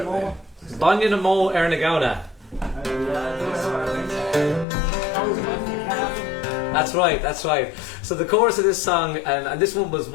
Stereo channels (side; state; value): right; drops out; at 4.7 s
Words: over there? Banya na mo ar na gauna. That's right, that's right. So the chorus of this song, and this one was